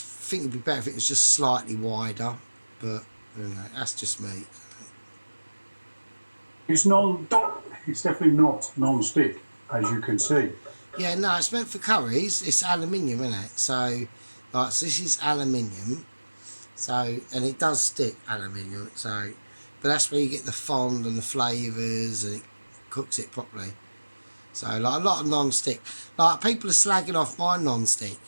think it'd be better if it was just slightly wider, but you know, that's just me. It's definitely not non-stick, as you can see. Yeah, no, it's meant for curries. It's aluminium, isn't it? So this is aluminium. So, and it does stick, aluminium. So, but that's where you get the fond and the flavours, and it cooks it properly. So, like a lot of non-stick. Like people are slagging off my non-stick.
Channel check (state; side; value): inverted; both; correlation -1.00